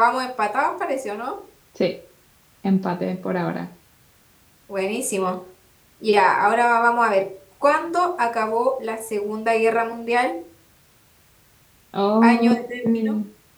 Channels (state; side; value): identical; both; correlation 1.00